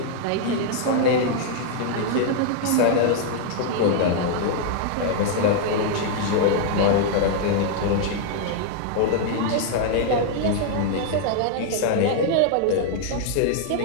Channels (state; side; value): different; both; correlation -0.01